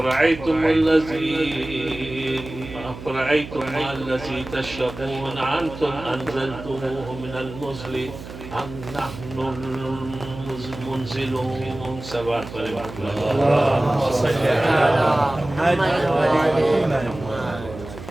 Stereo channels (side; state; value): right; noise; hum, 13 dB below the sound